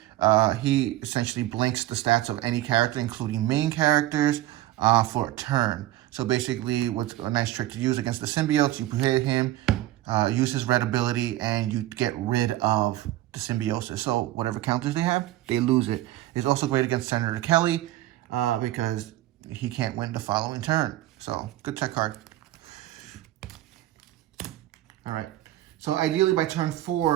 He essentially blinks the stats of any character, including main characters, for a turn. So basically, what's a nice trick to use against the symbiotes, you hit him, use his red ability, and you get rid of the symbiosis. So whatever counters they have, they lose it. It's also great against Senator Kelly because he can't win the following turn. So good tech card. All right. So ideally by turn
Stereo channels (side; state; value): left; quieter; 15.2 dB